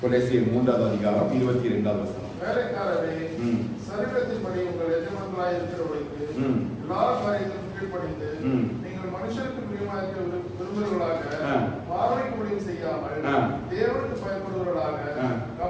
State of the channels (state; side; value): identical; both; correlation 1.00